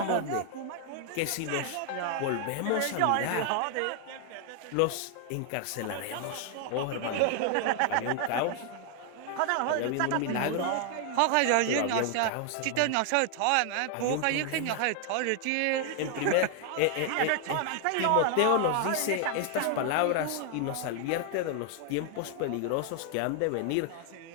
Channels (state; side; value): different; both; correlation 0.00